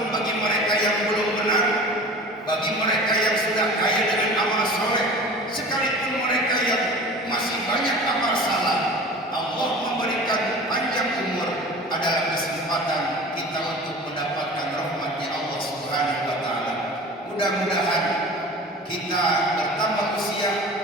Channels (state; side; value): normal; both; correlation 0.39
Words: bagi mereka yang belum benar, bagi mereka yang sudah kaya dengan amal soleh, sekalipun mereka yang masih banyak amal salah. Allah memberikan panjang umur adalah kesempatan kita untuk mendapatkan rahmatnya Allah Subhanahu wa taala. Mudah-mudahan kita bertambah usia,